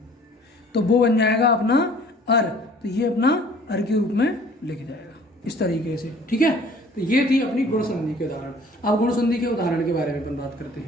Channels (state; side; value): normal; both; correlation 0.52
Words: तो वो बन जाएगा अपना अर, तो ये अपना अर के रूप में लिख जाएगा इस तरीके से। ठीक है, तो ये थी अपनी गुण संधि के उदाहरण। अब गुण संधि के उदाहरण के बारे में अपन बात करते